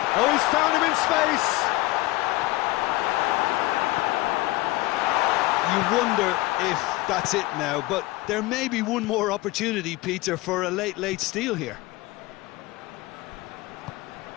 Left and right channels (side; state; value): right; quieter; 20.0 dB